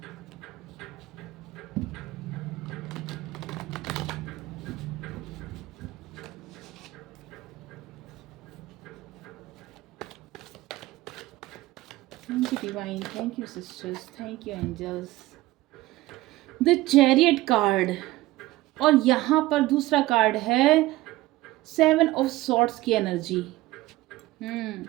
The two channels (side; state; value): left; quieter; 17.9 dB